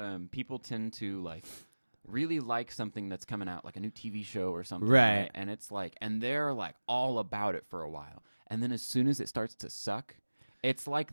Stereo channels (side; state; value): both; inverted; correlation -1.00